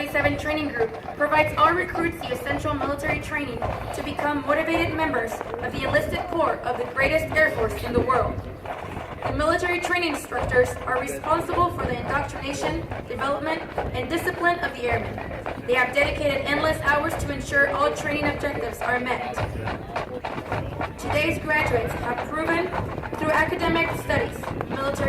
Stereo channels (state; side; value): identical; both; correlation 1.00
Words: Training Group provides all recruits the essential military training to become motivated members of the enlisted corps of the greatest Air Force in the world. The military training instructors are responsible for the indoctrination, development, and discipline of the airmen. They have dedicated endless hours to ensure all training objectives are met. Today's graduates have proven through academic studies,